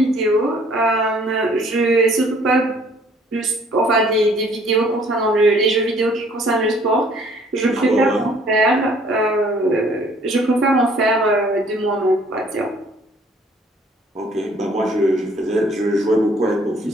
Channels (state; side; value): normal; both; correlation 0.59